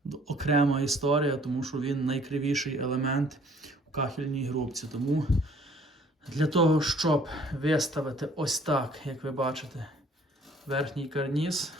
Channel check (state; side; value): normal; both; correlation 0.57